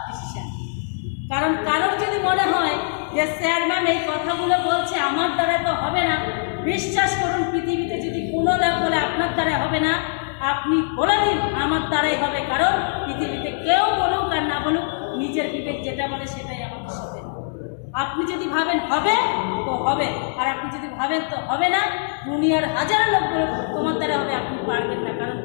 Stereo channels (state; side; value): silent; right; digital silence